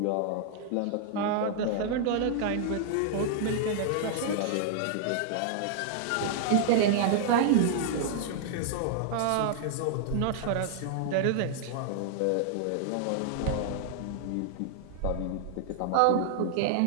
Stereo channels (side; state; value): both; different; correlation 0.00